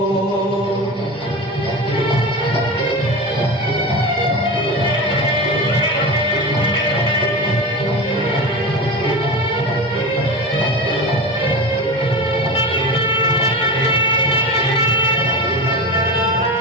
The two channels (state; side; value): normal; both; correlation 0.26